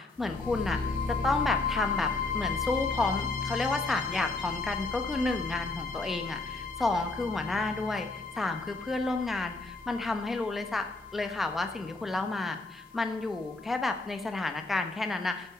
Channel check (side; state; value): right; quieter; 3.2 dB